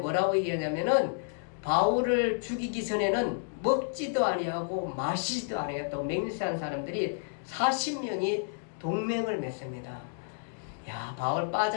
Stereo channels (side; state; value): right; silent; digital silence